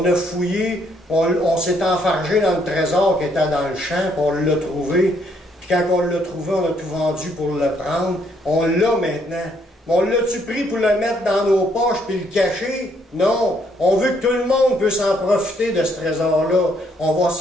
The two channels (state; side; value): normal; both; correlation 0.70